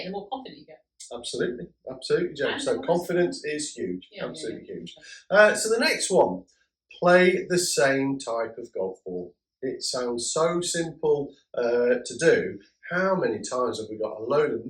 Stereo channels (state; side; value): identical; both; correlation 1.00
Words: it, the more confident you get. Absolutely, Joe. So confidence is huge, absolutely huge. So the next one, play the same type of golf ball. It sounds so simple to do. How many times have we got a load of